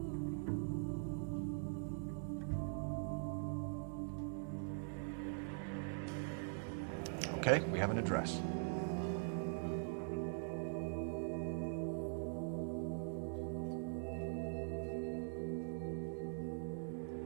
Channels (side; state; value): left; silent; digital silence